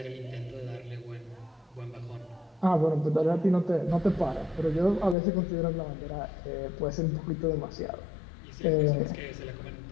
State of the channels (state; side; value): drops out; right; at 5.2 s